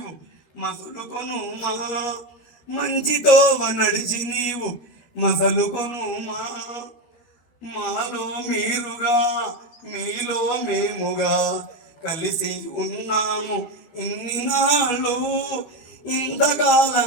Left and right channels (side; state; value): right; late; 12 ms